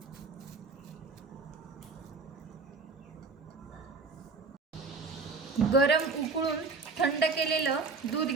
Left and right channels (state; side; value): quieter; left; 4.2 dB